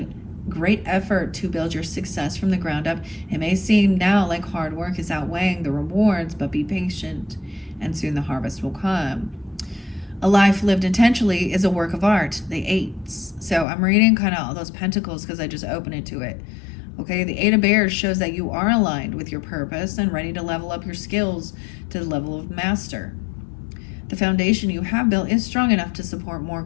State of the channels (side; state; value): right; drops out; at 13.7 s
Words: great effort to build your success from the ground up. It may seem now like hard work is outweighing the rewards, but be patient, and soon the harvest will come. A life lived intentionally is a work of art. The 8s. So I'm reading kind of all those pentacles because I just opened it to it. Okay, the 8 of Bears shows that you are aligned with your purpose and ready to level up your skills to the level of master. The foundation you have built is strong enough to support more